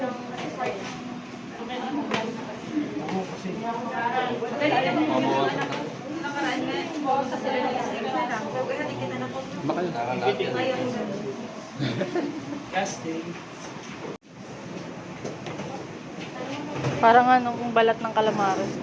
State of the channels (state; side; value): identical; both; correlation 1.00